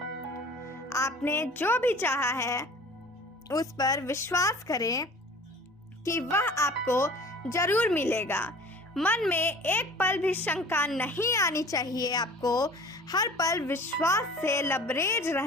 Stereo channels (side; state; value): both; normal; correlation 0.45